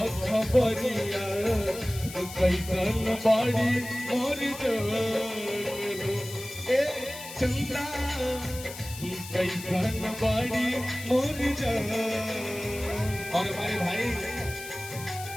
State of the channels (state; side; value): noise; left; hiss, 13 dB below the sound